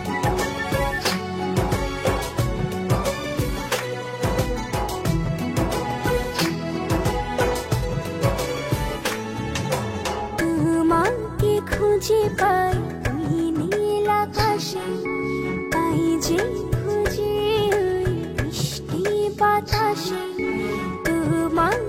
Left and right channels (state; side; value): identical; both; correlation 1.00